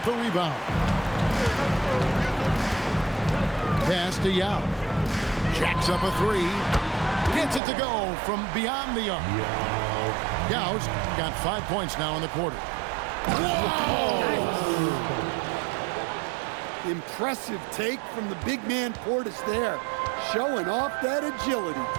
the rebound. Pass to Yao. Jacks up a three. Gets it to go from beyond the arc. Yao's got 5 points now in the quarter. Whoa! Impressive take from the big man Portis there, showing off that agility.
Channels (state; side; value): drops out; left; at 7.6 s